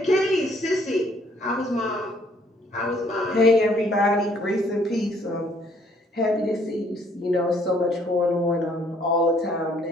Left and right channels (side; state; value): both; normal; correlation 0.64